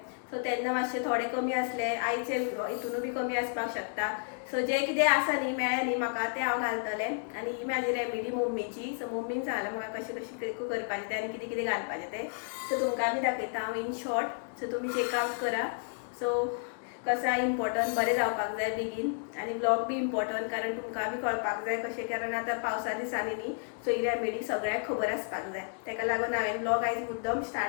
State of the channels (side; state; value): right; silent; 57 dB below the other